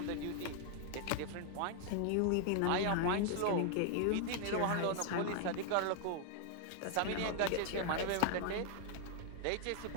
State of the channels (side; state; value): both; different; correlation 0.00